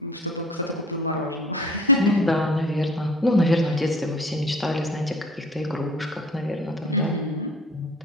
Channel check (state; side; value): normal; both; correlation 0.47